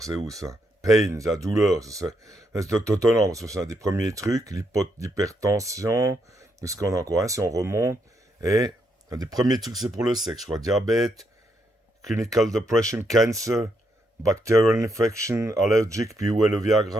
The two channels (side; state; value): both; normal; correlation 0.78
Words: c'est où ça? Pain, la douleur, c'est étonnant, parce que c'est un des premiers trucs. L'hypertension, qu'est-ce qu'on a encore, hein, si on remonte. Et un des premiers trucs, c'est pour le sexe, je crois. Diabète, clinical depression, cancer, bacterial infection, allergic, puis où est le